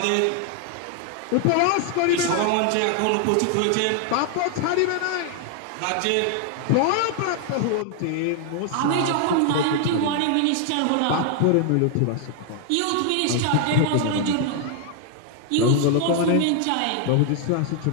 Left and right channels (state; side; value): different; both; correlation 0.00